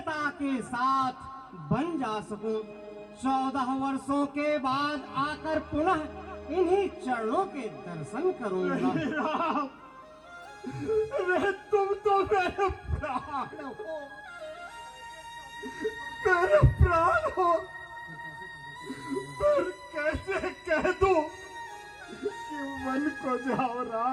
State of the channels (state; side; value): identical; both; correlation 1.00